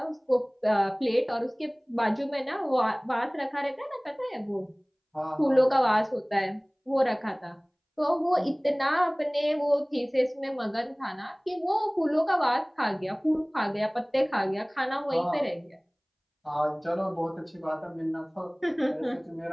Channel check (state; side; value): identical; both; correlation 1.00